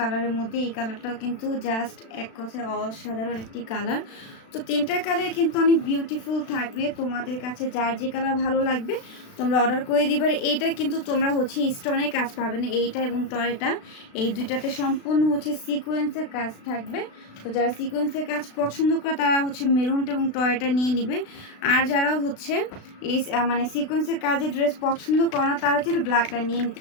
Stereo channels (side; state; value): right; late; 36 ms